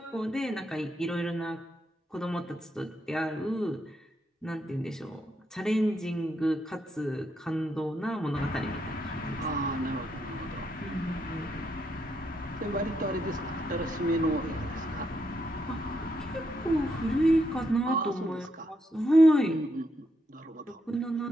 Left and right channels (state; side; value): normal; both; correlation 0.79